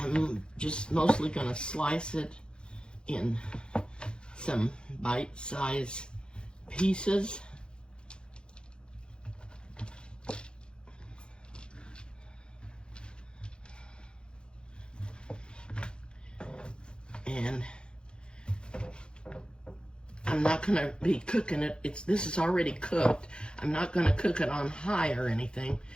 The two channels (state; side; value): late; right; 0.051 ms